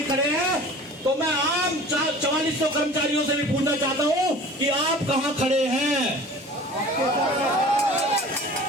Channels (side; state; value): both; normal; correlation 0.43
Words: खड़े हैं, तो मैं आम 4400 कर्मचारियों से भी पूछना चाहता हूं कि आप कहां खड़े हैं।